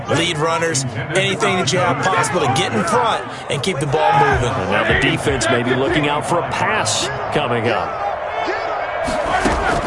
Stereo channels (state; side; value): identical; both; correlation 1.00